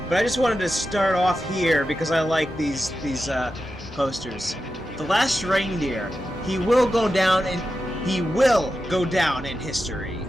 But I just wanted to start off here because I like these posters. The last reindeer, he will go down in history.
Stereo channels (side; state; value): both; normal; correlation 0.91